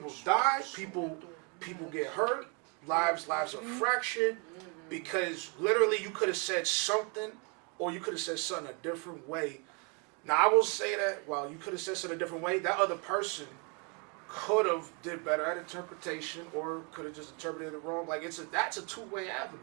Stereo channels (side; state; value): left; quieter; 34.1 dB